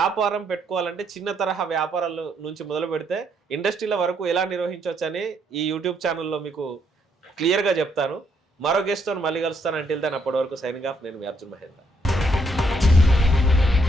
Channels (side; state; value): both; normal; correlation 0.73